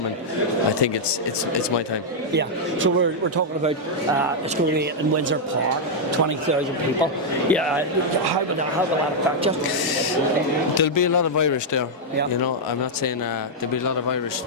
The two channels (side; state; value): both; normal; correlation -0.04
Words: I think it's my time. Yeah. So we're talking about it's going to be in Windsor Park, 20,000 people. Yeah. How will that affect you? There'll be a lot of Irish there. Yeah. You know, I'm not saying there'll be a lot of Irish